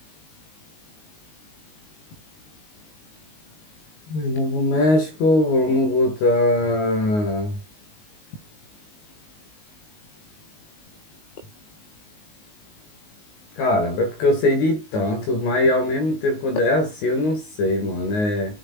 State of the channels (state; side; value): late; right; 19 ms